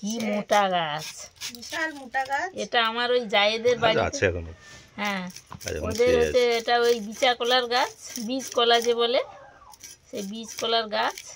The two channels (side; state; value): both; identical; correlation 1.00